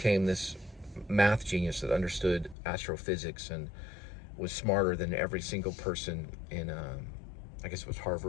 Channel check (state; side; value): drops out; right; at 2.6 s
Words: this math genius that understood astrophysics and was smarter than every single person in, I guess it was